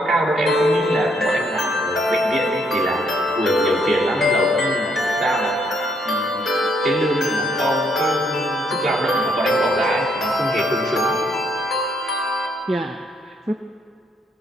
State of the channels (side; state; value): both; normal; correlation 0.71